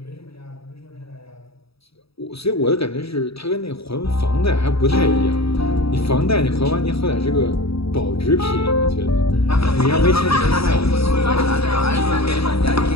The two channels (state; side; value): late; right; 0.77 ms